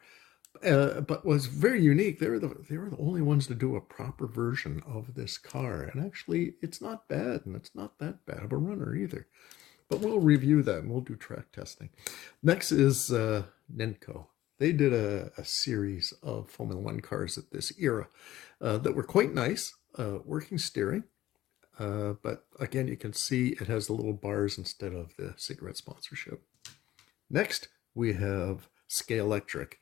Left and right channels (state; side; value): quieter; right; 14.8 dB